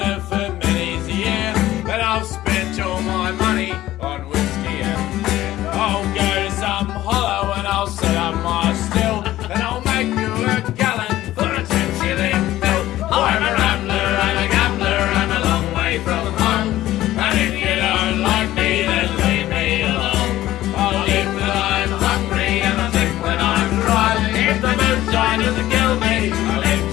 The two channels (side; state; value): right; quieter; 14.8 dB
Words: for many's a year, but I've spent all my money on whiskey and beer. I'll go to some hollow and I'll set up my still, and I'll make you a gallon for a 10-shilling bill. I'm a rambler, I'm a gambler, I'm a long way from home. And if you don't like me, then leave me alone. I'll live till I'm hungry and I'll drink when I'm dry. If the moonshine doesn't kill me, I'll live